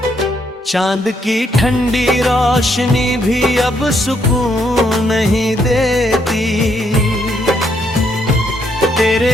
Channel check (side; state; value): both; normal; correlation 0.73